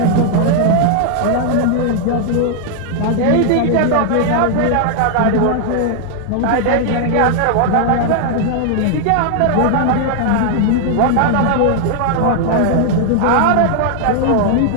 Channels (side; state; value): both; different; correlation 0.00